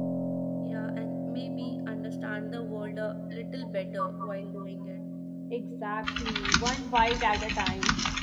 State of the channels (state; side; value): identical; both; correlation 1.00